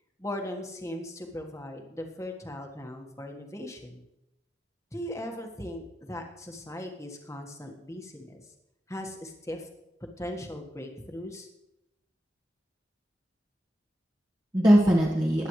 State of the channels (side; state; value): both; normal; correlation 0.89